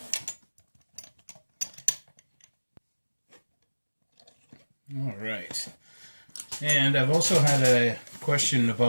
All right. And I've also had a question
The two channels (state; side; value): inverted; both; correlation -1.00